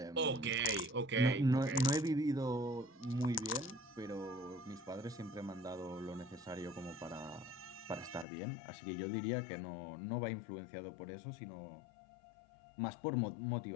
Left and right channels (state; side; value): drops out; right; at 8.2 s